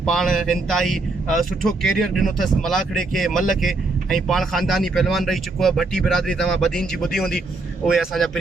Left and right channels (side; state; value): left; quieter; 3.4 dB